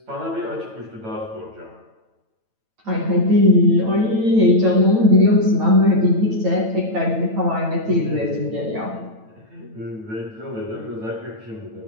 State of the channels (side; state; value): left; late; 9.1 ms